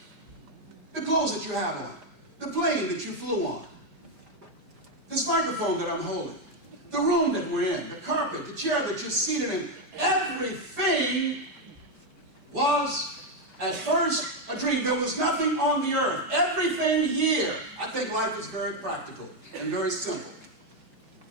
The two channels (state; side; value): late; left; 5.0 ms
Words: The clothes that you have on, the plane that you flew on, this microphone that I'm holding, the room that we're in, the carpet, the chair that you're seated in, everything was, At first, a dream. There was nothing on the earth. Everything here, I think life is very practical and very simple.